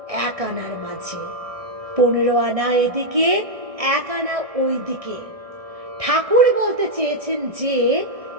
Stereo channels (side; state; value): left; late; 1.6 ms